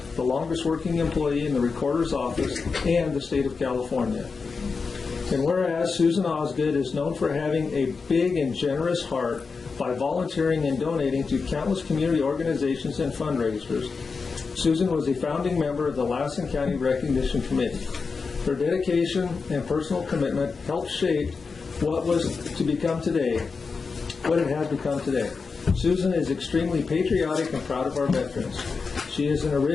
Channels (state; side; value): quieter; right; 4.8 dB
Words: the longest working employee in the Recorder's Office and the state of California. And whereas Susan Osgood is known for having a big and generous heart by volunteering and donating to countless community organizations and fundraisers, Susan was a founding member of the Lassen County Recognition Committee. Her dedication and personal commitment helped shape what it has become today. Susan is extremely patriotic and proud of our veterans. She is an